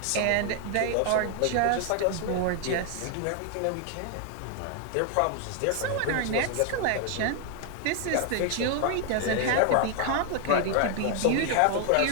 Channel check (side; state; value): both; different; correlation 0.00